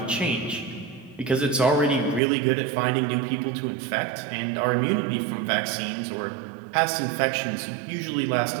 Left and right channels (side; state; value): left; drops out; at 2.2 s